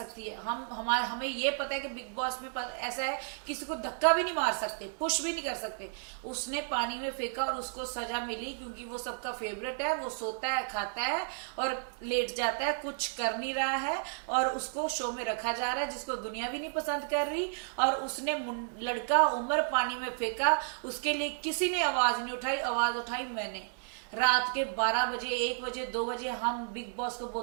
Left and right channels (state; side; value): silent; left; digital silence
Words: है। हमें ये पता है कि बिग बॉस में ऐसा है, किसी को धक्का भी नहीं मार सकते, पुश भी नहीं कर सकते। उसने पानी में फेंका और उसको सजा मिली क्योंकि वो सबका फेवरेट है, वो सोता है, खाता है और लेट जाता है, कुछ कर नहीं रहा है और उसको शो में रखा जा रहा है, जिसको दुनिया भी नहीं पसंद कर रही। और उसने लड़का उमर पानी में फेंका, उसके लिए किसी ने आवाज नहीं उठाई, आवाज उठाई मैंने। रात के 12 बजे, 1 बजे, 2 बजे हम बिग बॉस को